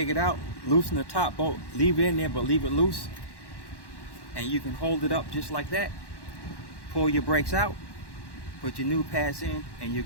it out, loosen the top bolt, leave it in there but leave it loose, and you can hold it up just like that. Pull your brakes out, put your new pads in, and you're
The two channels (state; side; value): late; right; 1.1 ms